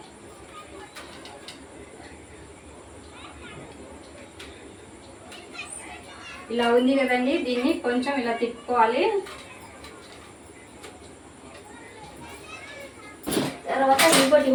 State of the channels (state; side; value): identical; both; correlation 1.00